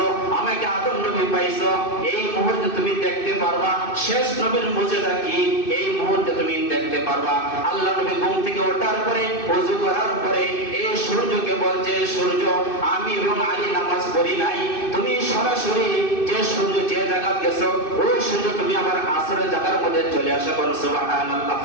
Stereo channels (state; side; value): late; right; 2.6 ms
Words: আমাকে আদম নবী পাইছো। এই মুহূর্তে তুমি দেখতে পারবা শেষ নবীর মুজিজা কি, এই মুহূর্তে তুমি দেখতে পারবা। আল্লাহ নবী ঘুম থেকে ওঠার পরে ওযু করার পরে এই সূর্যকে বলছে, সূর্য, আমি এবং আলী নামাজ পড়ি নাই, তুমি সরাসরি যে সূর্য যে জায়গা গেছো ওই সূর্য তুমি আবার আসরের জায়গার মধ্যে চলে আসা করো। সুবহানাল্লাহ।